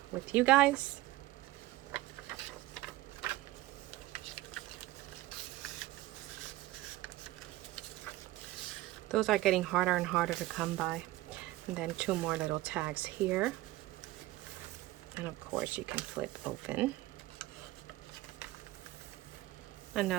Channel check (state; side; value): quieter; left; 17.3 dB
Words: with you guys. Those are getting harder and harder to come by. And then two more little tags here. And of course you can flip open.